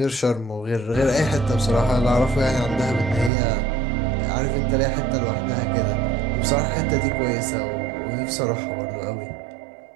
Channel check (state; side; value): drops out; left; at 3.3 s